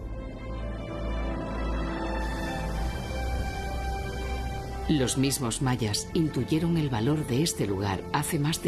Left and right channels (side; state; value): both; identical; correlation 1.00